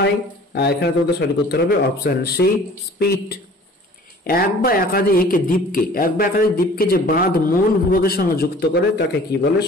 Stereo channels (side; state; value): both; normal; correlation 0.48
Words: এখানে তোমাদের সঠিক উত্তর হবে অপশন সি স্পিট। এক বা একাধিক দ্বীপকে যে বাঁধ মূল ভূভাগের সঙ্গে যুক্ত করে তাকে কি বলে?